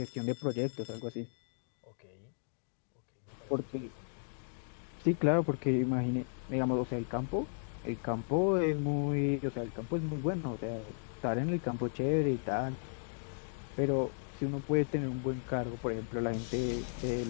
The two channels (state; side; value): silent; right; digital silence